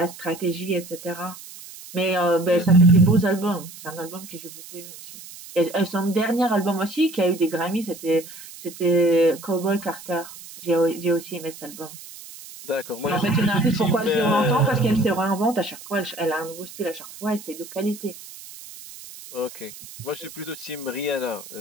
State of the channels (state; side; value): noise; right; hiss, 16 dB below the sound